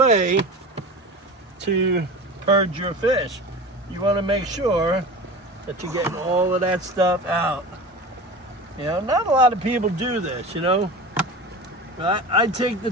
to purge your fish. You want to make sure that you're getting all of that stuff out. You know, not a lot of people do this, you know. But I take the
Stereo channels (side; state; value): both; normal; correlation 0.33